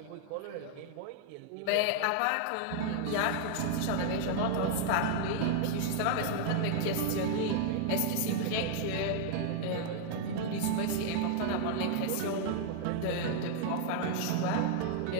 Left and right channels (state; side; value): different; both; correlation 0.00